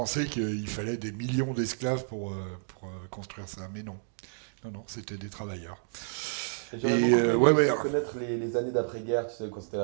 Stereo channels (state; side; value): silent; left; digital silence